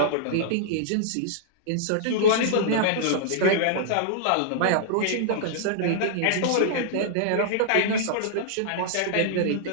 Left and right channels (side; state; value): both; different; correlation -0.02